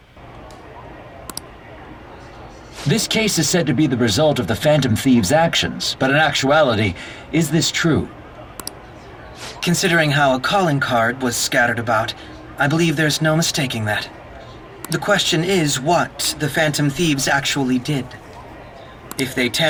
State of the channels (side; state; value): both; identical; correlation 1.00